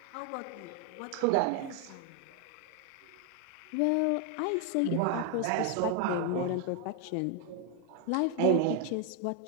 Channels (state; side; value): different; both; correlation 0.01